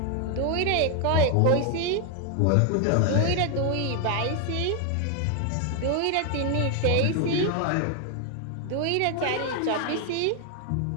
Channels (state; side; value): different; both; correlation 0.01